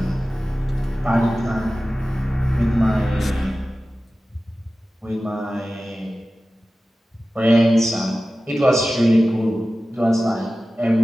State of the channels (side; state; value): both; normal; correlation 0.95